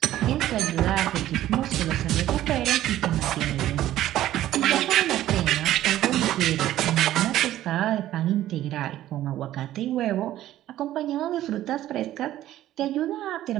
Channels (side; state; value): left; quieter; 13.6 dB